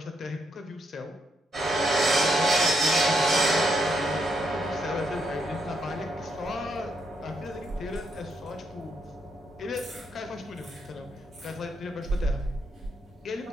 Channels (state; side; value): normal; both; correlation 0.77